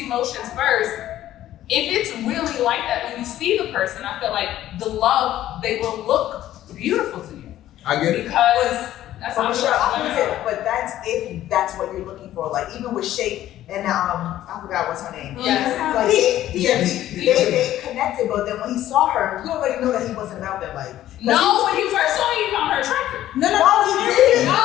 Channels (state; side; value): quieter; right; 13.2 dB